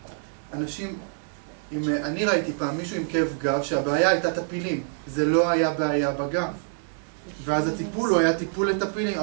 אנשים, אני ראיתי פעם מישהו עם כאב גב שהבעיה הייתה טפילים, זה לא היה בעיה בגב. ואז הטיפול הוא היה טיפול לטפילים,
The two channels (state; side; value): silent; left; 61 dB below the other